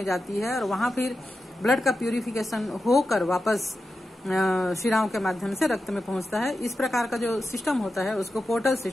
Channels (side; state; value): both; normal; correlation 0.91